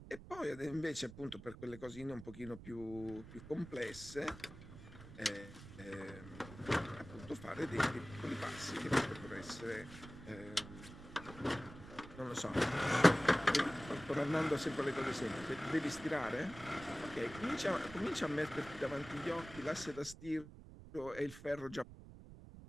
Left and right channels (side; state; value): right; noise; rumble, 15 dB below the sound